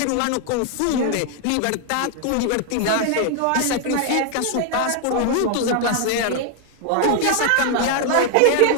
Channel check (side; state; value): both; different; correlation 0.00